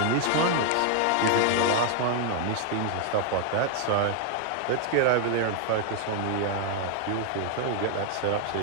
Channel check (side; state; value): both; different; correlation 0.00